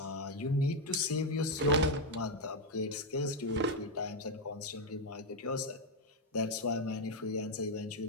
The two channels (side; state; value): both; normal; correlation 0.03